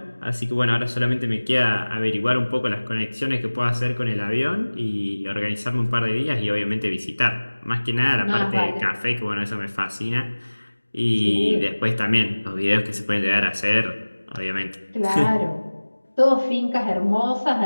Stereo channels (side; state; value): both; inverted; correlation -1.00